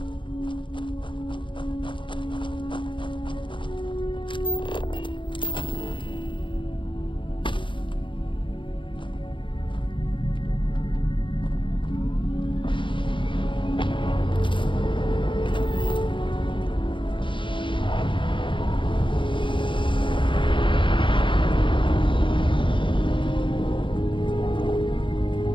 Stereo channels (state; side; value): late; right; 0.24 ms